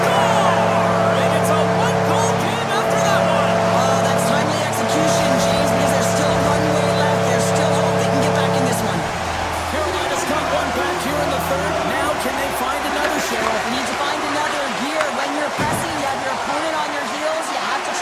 And it's a one-goal game after that one. Oh, that's timely execution, James, because there's still runway left. There's still hope they can get back in this one. Carolina's got one back here in the third. Now can they find another, Cheryl? You need to find another gear. When you're pressing, you have your opponent on your heels. You have to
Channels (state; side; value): identical; both; correlation 1.00